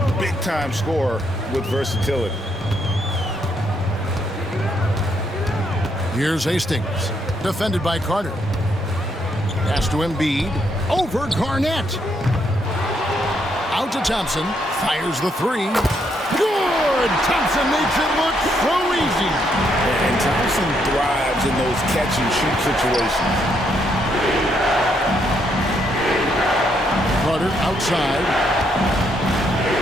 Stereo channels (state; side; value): normal; both; correlation 0.75